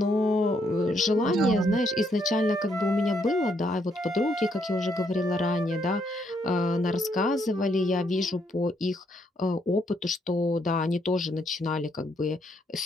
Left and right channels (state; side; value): normal; both; correlation 0.73